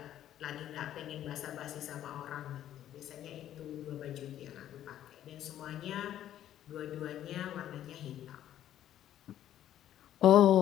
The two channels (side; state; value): right; quieter; 11.7 dB